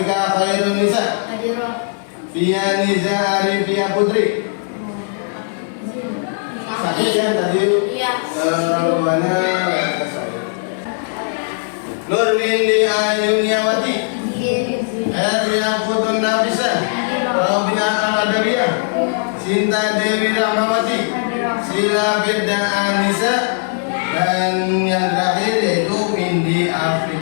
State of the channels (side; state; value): right; silent; digital silence